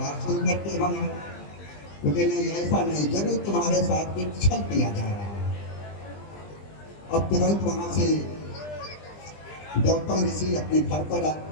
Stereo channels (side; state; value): right; late; 20 ms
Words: सुन करके हम हैं। तो कहते नहीं, ऐसा नहीं, जरूर तुम्हारे साथ कुछ छल किया जा रहा है। अब तुरंत वहां से गौतम ऋषि अपने घर